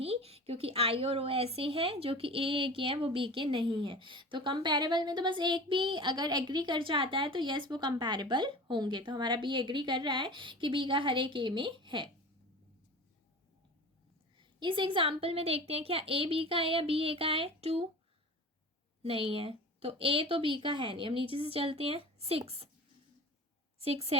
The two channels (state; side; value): normal; both; correlation 0.37